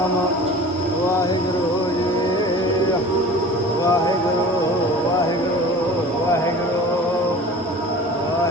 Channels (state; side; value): normal; both; correlation 0.40